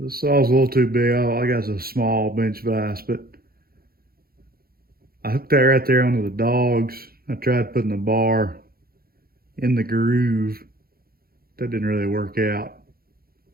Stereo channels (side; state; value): left; late; 0.44 ms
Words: saw's a little too big. I got a small bench vise, but I hooked that right there onto the dogs. I tried putting the bar in the groove. That didn't really work out.